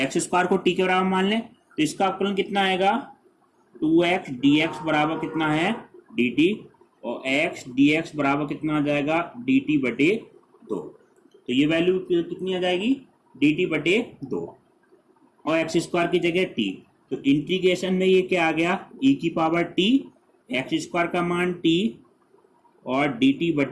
को t के बराबर मान लें, तो इसका अवकलन कितना आएगा 2x dx बराबर कितना है dt, और x dx बराबर कितना आ जाएगा dt/2। तो ये वैल्यू कितनी आ जाएगी, dt बटे 2 और एक्स स्क्वायर की जगह t। तो इंटीग्रेशन में ये क्या आ गया, e की पावर t, एक्स स्क्वायर का मान t और dt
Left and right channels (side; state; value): both; identical; correlation 1.00